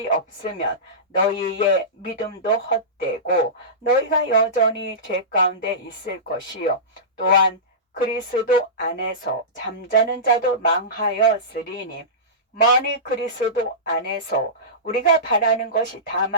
없으면 너희의 믿음도 헛되고 너희가 여전히 죄 가운데 있을 것이요. 또한 그리스도 안에서 잠자는 자도 망하였으리니 만일 그리스도 안에서 우리가 바라는 것이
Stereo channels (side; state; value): both; normal; correlation -0.19